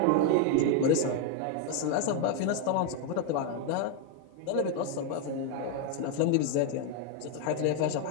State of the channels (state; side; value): different; both; correlation 0.01